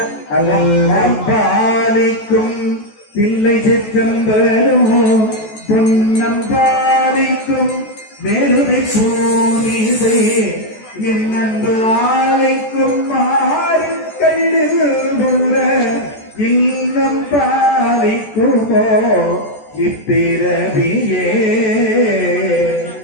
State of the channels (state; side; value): late; right; 14 ms